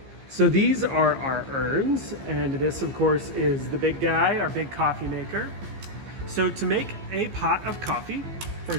So these are our urns, and this of course is the big guy, our big coffee maker. So to make a pot of coffee,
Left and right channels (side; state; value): left; late; 15 ms